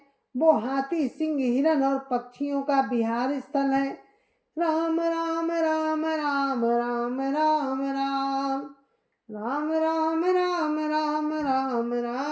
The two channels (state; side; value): identical; both; correlation 1.00